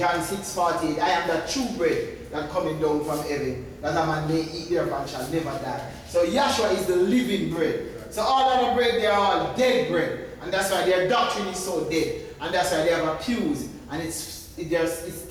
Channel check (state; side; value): identical; both; correlation 1.00